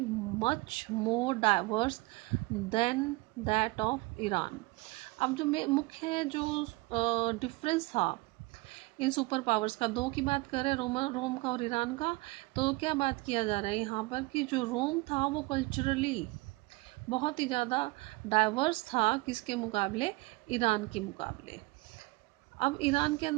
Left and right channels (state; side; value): quieter; left; 23.2 dB